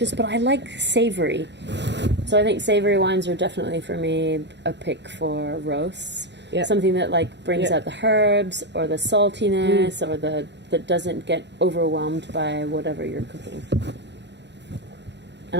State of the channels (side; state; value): left; late; 0.51 ms